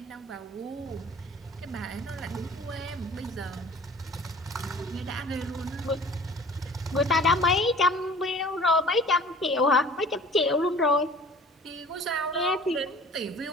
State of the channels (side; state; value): both; normal; correlation 0.47